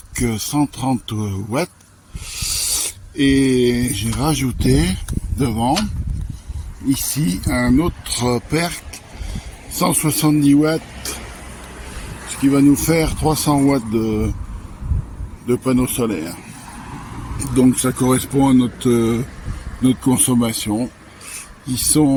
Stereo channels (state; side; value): identical; both; correlation 1.00